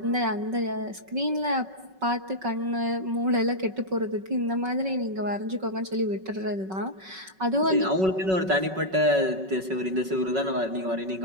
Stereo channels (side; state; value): left; late; 5.3 ms